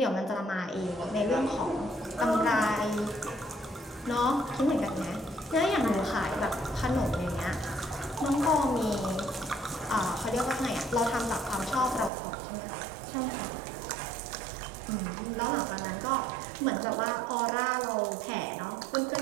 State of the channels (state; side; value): drops out; left; at 12.1 s